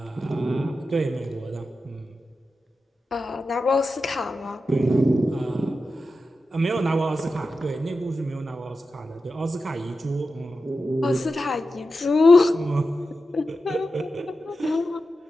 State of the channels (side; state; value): both; normal; correlation 0.91